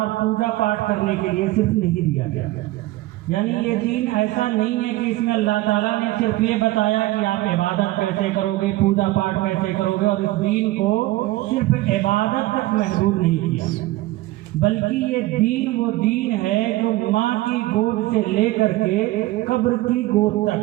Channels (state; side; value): quieter; left; 17.9 dB